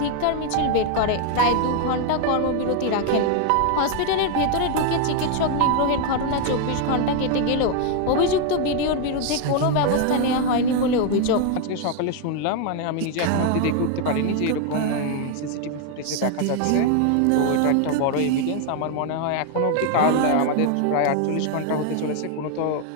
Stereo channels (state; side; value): different; both; correlation 0.01